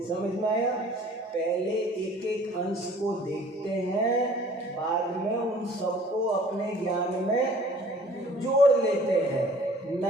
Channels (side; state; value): both; normal; correlation 0.52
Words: समझ में आया? पहले एक एक अंश को देखते हैं, बाद में उन सबको अपने ज्ञान में जोड़ लेते हैं।